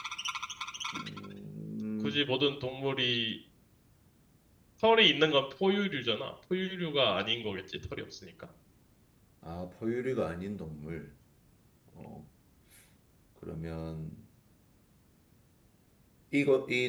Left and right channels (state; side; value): identical; both; correlation 1.00